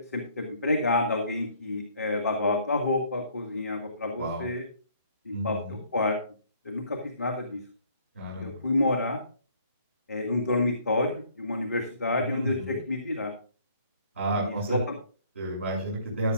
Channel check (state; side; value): inverted; both; correlation -0.61